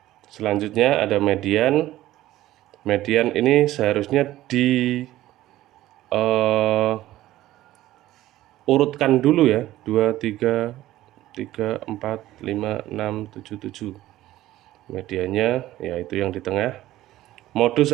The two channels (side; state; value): left; quieter; 15.1 dB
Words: Selanjutnya ada median. Median ini seharusnya urutkan dulu ya. 2, 3, 3, 4, 5, 6, 7, 7. Mediannya yaitu yang di tengah.